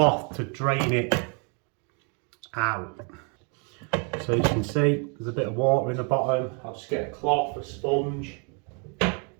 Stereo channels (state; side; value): quieter; left; 37.0 dB